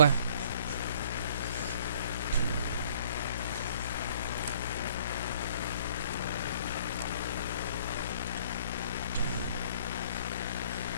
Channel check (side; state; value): both; inverted; correlation -0.56